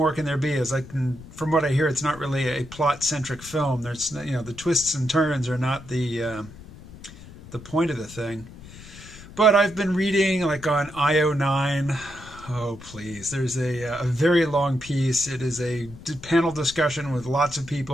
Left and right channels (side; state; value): left; noise; rumble, 17 dB below the sound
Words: can there be? From what I hear, it's not really a plot-centric film. There's, the twists and turns are not the point of the thing. But I've been reading, on IO9. Oh, please. There's a very long piece. It is a panel discussion with lots of